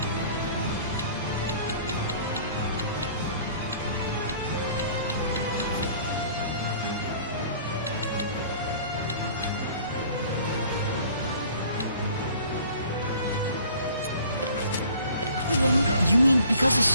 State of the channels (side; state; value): both; inverted; correlation -0.51